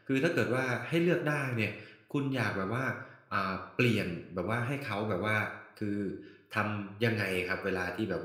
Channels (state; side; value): identical; both; correlation 1.00